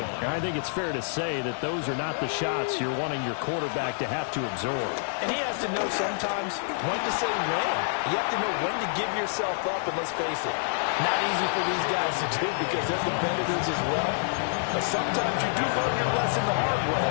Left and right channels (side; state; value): right; silent; 60 dB below the other